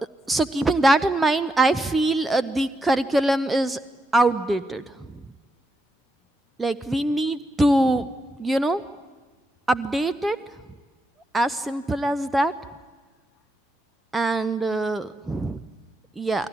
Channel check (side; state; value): both; normal; correlation 0.84